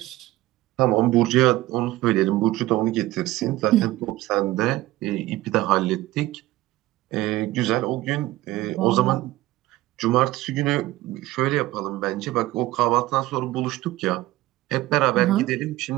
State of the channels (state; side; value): quieter; left; 17.1 dB